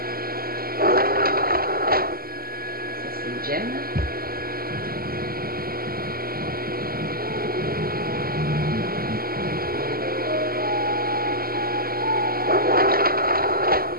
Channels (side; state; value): left; late; 0.43 ms